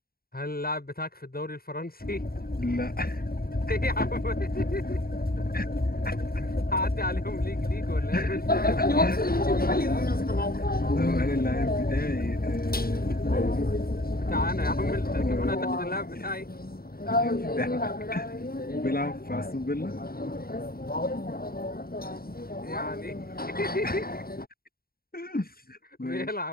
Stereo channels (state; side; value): late; right; 0.43 ms